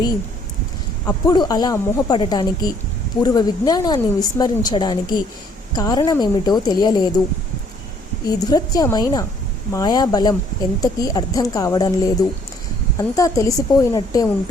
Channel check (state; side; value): normal; both; correlation 0.63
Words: అప్పుడు అలా మోహపడటానికి, పూర్వ విజ్ఞానాన్ని విస్మరించడానికి కారణమేమిటో తెలియలేదు. ఈ దురత్యమైన మాయాబలం ఎంతకీ అర్థం కావడం లేదు. అంతా తెలిసిపోయినట్టే